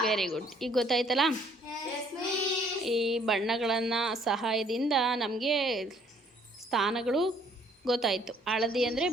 Very good. ಈಗ ಗೊತ್ತಾಯ್ತಲ್ಲ? ಈ ಬಣ್ಣಗಳನ್ನು ಸಹಾಯದಿಂದ ನಮಗೆ ಸ್ಥಾನಗಳು ಗೊತ್ತಾಯಿತು. ಹಳದಿ ಅಂದರೆ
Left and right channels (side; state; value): both; normal; correlation 0.62